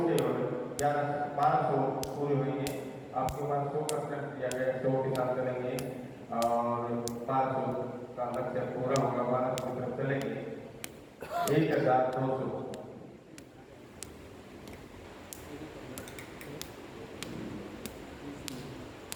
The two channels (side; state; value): both; identical; correlation 1.00